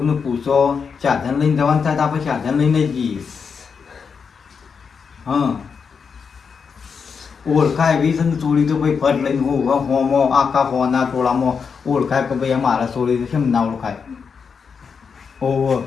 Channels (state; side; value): quieter; right; 5.9 dB